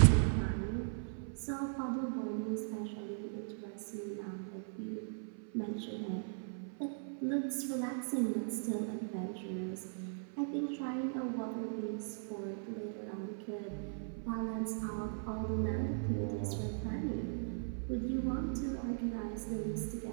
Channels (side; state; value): left; silent; 52 dB below the other